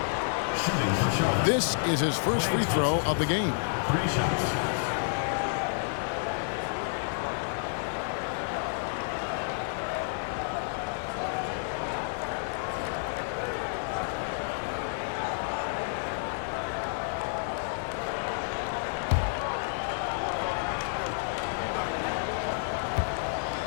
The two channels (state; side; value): silent; right; digital silence